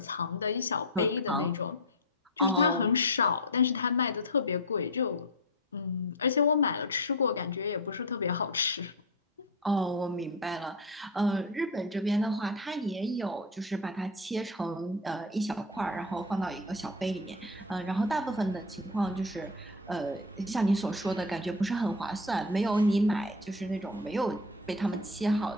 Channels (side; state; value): both; normal; correlation 0.19